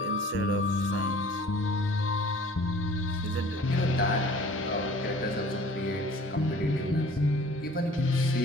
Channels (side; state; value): both; normal; correlation 0.49